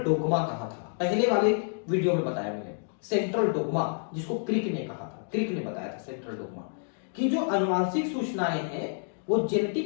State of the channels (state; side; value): silent; right; digital silence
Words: कहा था, पहले वाले वीडियो में बताया मैंने सेंट्रल डोग्मा, जिसको क्रिक ने कहा था, क्रिक ने बताया था सेंट्रल डोग्मा कि जो आनुवांशिक सूचनाएं हैं वो